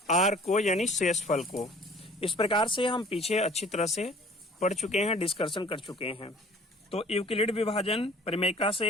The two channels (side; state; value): both; normal; correlation 0.51